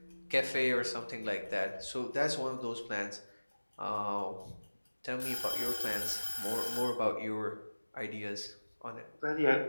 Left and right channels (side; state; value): both; inverted; correlation -1.00